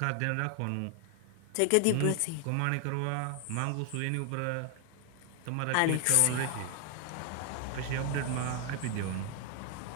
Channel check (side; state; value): both; different; correlation 0.00